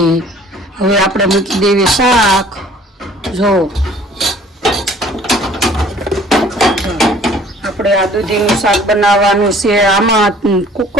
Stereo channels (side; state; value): both; normal; correlation 0.53